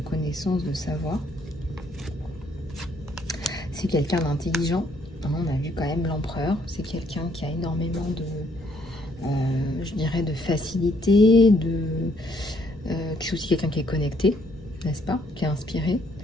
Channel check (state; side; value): noise; left; rumble, 20 dB below the sound